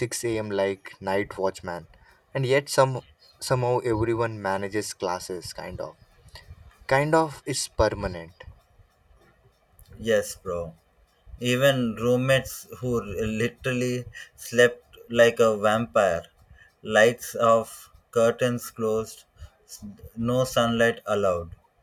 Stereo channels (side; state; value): both; identical; correlation 1.00